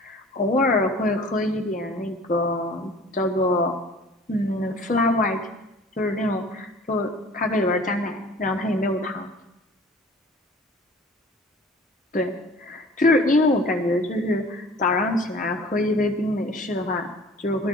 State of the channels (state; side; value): normal; both; correlation 0.47